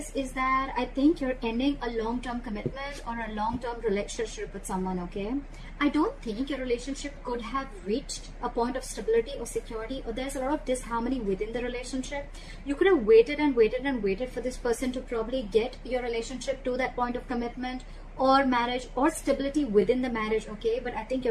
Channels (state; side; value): identical; both; correlation 1.00